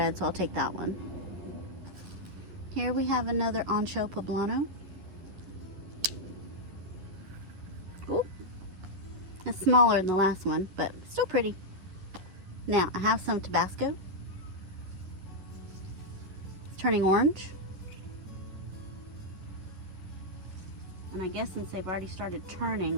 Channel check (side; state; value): left; late; 11 ms